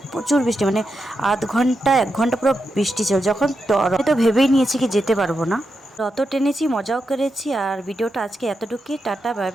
প্রচুর বৃষ্টি, মানে আধ ঘন্টা 1 ঘন্টা পুরো বৃষ্টি ছিল। যখন তো ভেবেই নিয়েছি কি যেতে পারবো না। রথ টেনেছি, মজাও করেছি। আর ভিডিওটা আজকে এতটুকুই। টাটা, বাই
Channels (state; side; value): normal; both; correlation 0.86